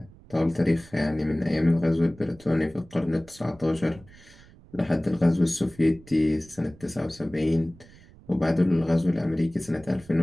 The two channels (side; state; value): right; noise; rumble, 24 dB below the sound